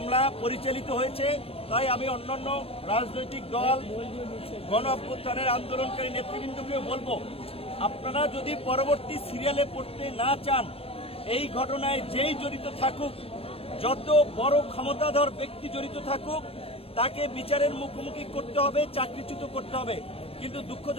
পরিচালিত হয়েছে। তাই আমি অন্যান্য রাজনৈতিক দল, গণ অভ্যুত্থানের আন্দোলনকারী নেতৃবৃন্দকেও বলবো, আপনারা যদি পরবর্তী সিরিয়ালে পড়তে না চান, এই ঘটনায় যেই জড়িত থাকুক, যত বড় ক্ষমতাধর ব্যক্তি জড়িত থাকুক, তাকে বিচারের মুখোমুখি করতে হবে, চাকরিচ্যুত করতে হবে। কিন্তু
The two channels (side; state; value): right; late; 0.28 ms